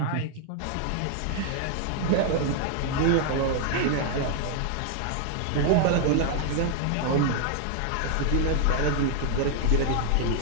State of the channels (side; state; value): both; different; correlation 0.00